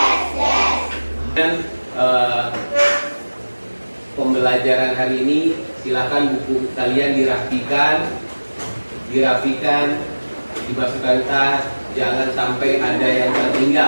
Dan pembelajaran hari ini silakan buku kalian dirapikan, dimasukkan tas, jangan sampai ada yang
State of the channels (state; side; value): inverted; both; correlation -1.00